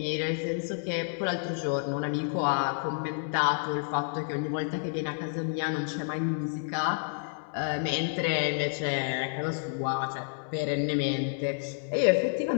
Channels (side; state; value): right; silent; 58 dB below the other